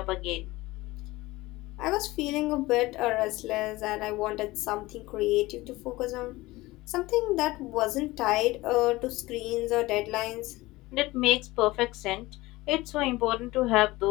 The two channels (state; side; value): quieter; right; 19.6 dB